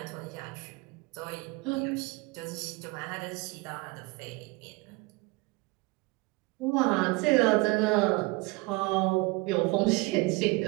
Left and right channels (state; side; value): quieter; left; 24.5 dB